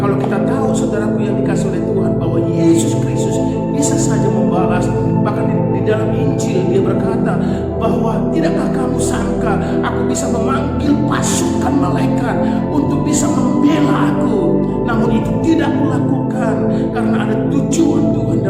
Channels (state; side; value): identical; both; correlation 1.00